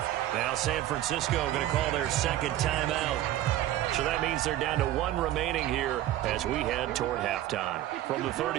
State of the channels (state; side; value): quieter; left; 13.5 dB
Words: Now San Francisco going to call their second timeout. So that means they're down to 1 remaining here as we head toward halftime. From the